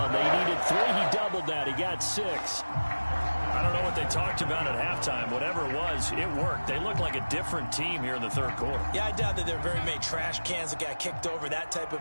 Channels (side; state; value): both; inverted; correlation -1.00